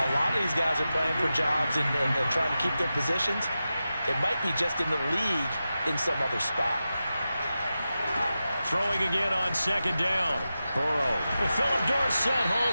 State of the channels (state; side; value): inverted; both; correlation -0.92